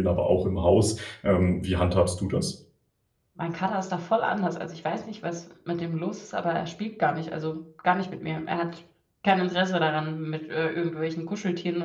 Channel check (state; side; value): identical; both; correlation 1.00